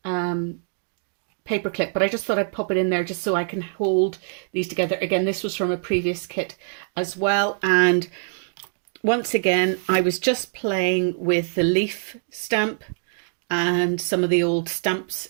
paper clip, but I just thought I'd pop it in there just so I can hold these together. Again, this was from a previous kit as well. And once again, I was just playing with the leaf stamp and some of the old stamps,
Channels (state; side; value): silent; left; digital silence